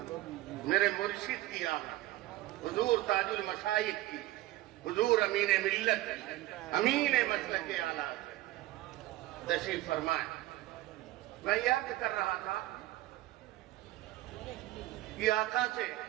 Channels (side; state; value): left; quieter; 16.5 dB